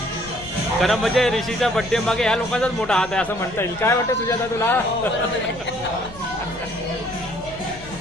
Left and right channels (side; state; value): left; noise; rumble, 17 dB below the sound